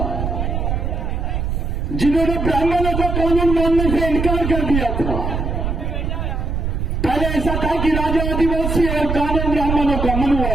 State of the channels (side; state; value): right; noise; rumble, 1 dB below the sound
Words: जिन्होंने ब्राह्मणों का कानून मानने से इनकार कर दिया था। पहले ऐसा था कि राजा आदिवासी और कानून ब्राह्मणों का,